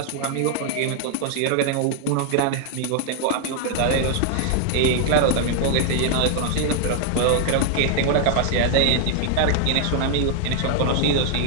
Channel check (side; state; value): both; different; correlation 0.00